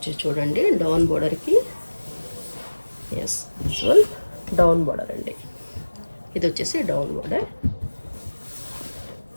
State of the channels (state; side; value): inverted; both; correlation -1.00